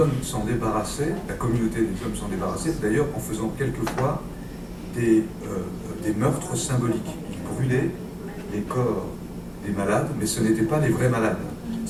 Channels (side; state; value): both; identical; correlation 1.00